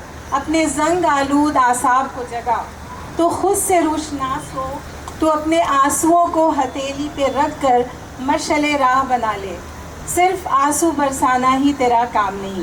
अपने जंग आलूद आसाब को जगा, तो खुद से रोशनास हो, तो अपने आंसुओं को हथेली पे रख कर मशले राह बना ले, सिर्फ आंसू बरसाना ही तेरा काम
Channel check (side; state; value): both; identical; correlation 1.00